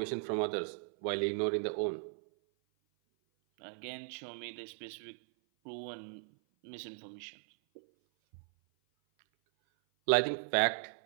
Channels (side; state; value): left; silent; 53 dB below the other